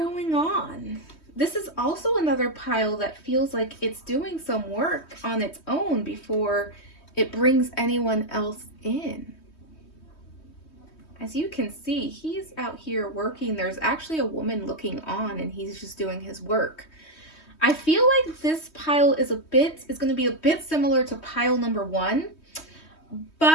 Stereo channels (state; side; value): late; right; 3.2 ms